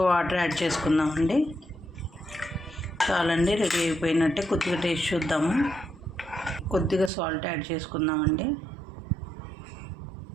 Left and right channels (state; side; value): drops out; left; at 7.1 s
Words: వాటర్ యాడ్ చేసుకుందామండి. చాలండి, రెడీ అయిపోయినట్టే. కొద్దిగా టేస్ట్ చూద్దాము. కొద్దిగా సాల్ట్ యాడ్ చేసుకుందామండి.